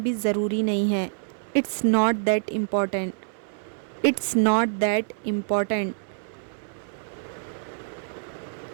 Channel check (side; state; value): left; silent; 61 dB below the other